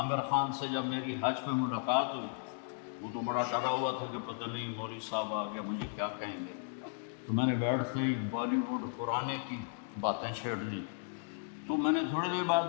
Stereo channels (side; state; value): right; silent; digital silence